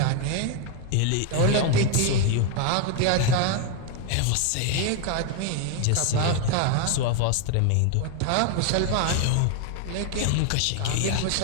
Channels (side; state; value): both; different; correlation 0.01